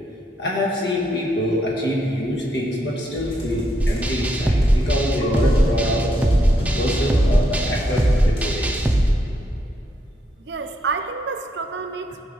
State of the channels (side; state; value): both; normal; correlation 0.77